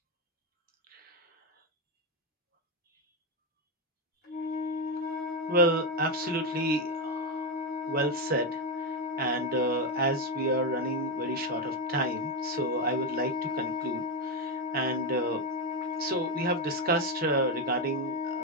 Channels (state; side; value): normal; both; correlation 0.08